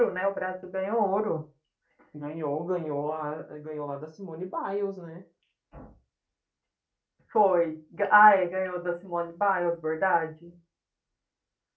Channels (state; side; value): identical; both; correlation 1.00